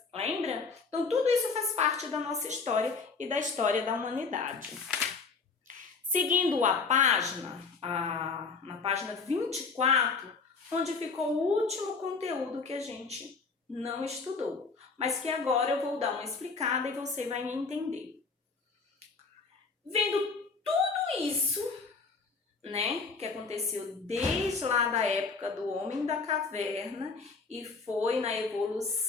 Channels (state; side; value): quieter; right; 4.6 dB